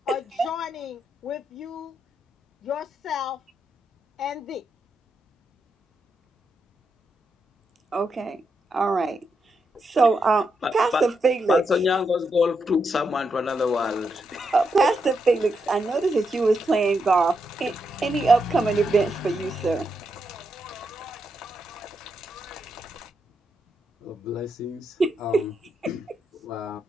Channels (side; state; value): both; normal; correlation 0.83